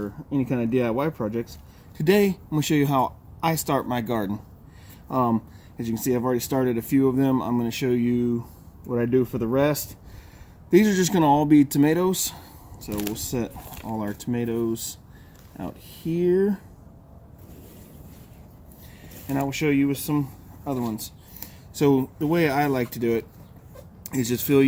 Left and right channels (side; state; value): both; identical; correlation 1.00